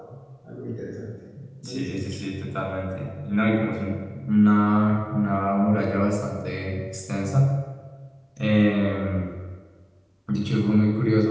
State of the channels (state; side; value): identical; both; correlation 1.00